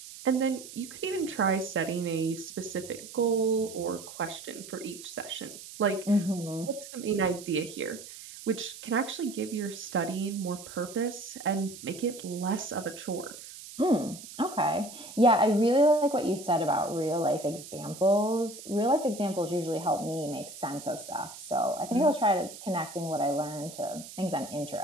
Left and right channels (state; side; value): noise; right; hiss, 14 dB below the sound